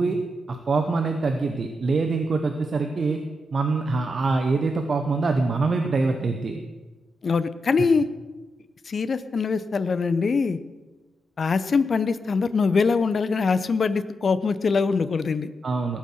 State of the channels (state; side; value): normal; both; correlation 0.85